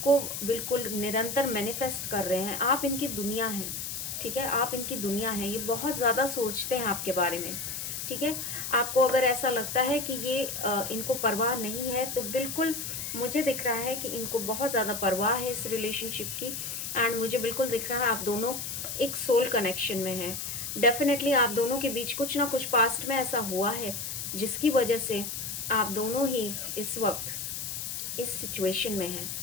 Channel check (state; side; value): noise; left; hiss, 5 dB below the sound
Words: बिल्कुल निरंतर मैनिफेस्ट कर रहे हैं, आप इनकी दुनिया हैं। ठीक है, आप इनकी दुनिया हैं, ये बहुत ज़्यादा सोचते हैं आपके बारे में। ठीक है, आपको अगर ऐसा लगता है कि ये इनको परवाह नहीं है, तो बिल्कुल मुझे दिख रहा है कि इनको बहुत ज़्यादा परवाह है इस रिलेशनशिप की, एंड मुझे बिल्कुल दिख रहा है आप दोनों एक सोल कनेक्शन में हैं। डेफिनेटली आप दोनों के बीच कुछ ना कुछ पास्ट में ऐसा हुआ है जिसकी वजह से आप दोनों ही इस वक्त इस सिचुएशन में हैं।